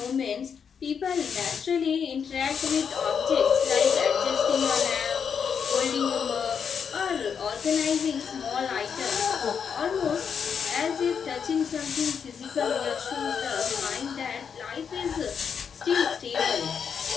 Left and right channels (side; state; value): right; quieter; 6.9 dB